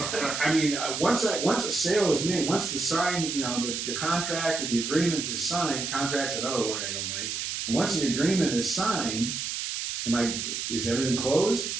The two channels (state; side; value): noise; right; hiss, 3 dB below the sound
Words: a sale is made, once the sign, the contract or the agreement is signed. Contract's another word I don't like. And once the agreement is signed, is everything